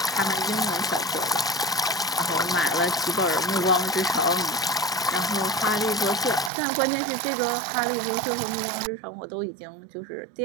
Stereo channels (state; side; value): drops out; left; at 6.5 s